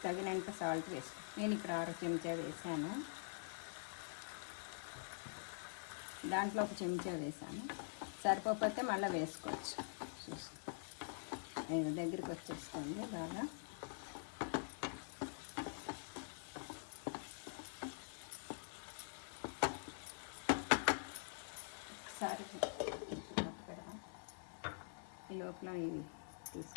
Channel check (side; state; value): right; silent; digital silence